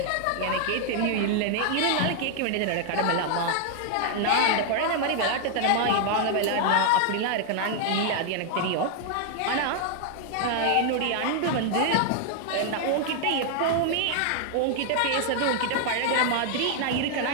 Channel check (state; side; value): different; both; correlation 0.00